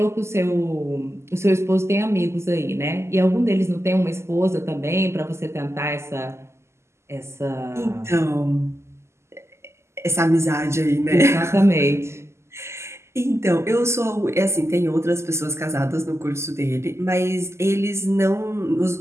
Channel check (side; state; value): left; late; 0.13 ms